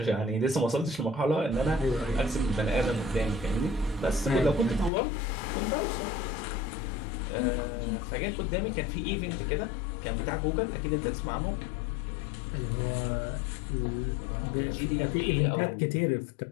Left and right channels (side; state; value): right; drops out; at 4.9 s